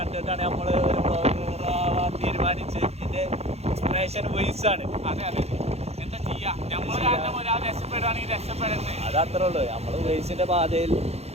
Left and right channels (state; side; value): late; left; 0.30 ms